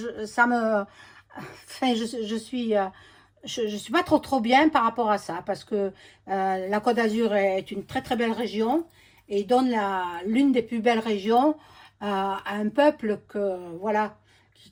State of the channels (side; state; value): both; identical; correlation 1.00